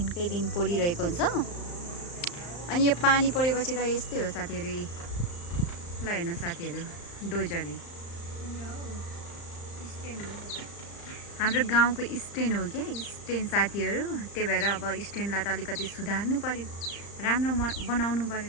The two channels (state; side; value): late; right; 35 ms